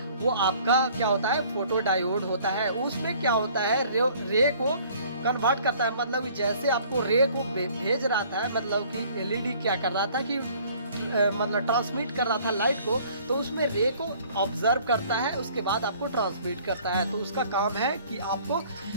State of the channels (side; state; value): both; inverted; correlation -0.55